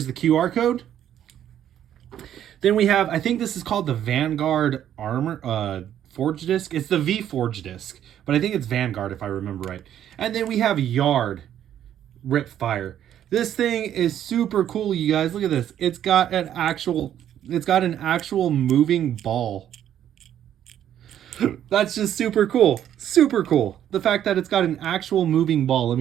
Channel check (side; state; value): left; quieter; 10.6 dB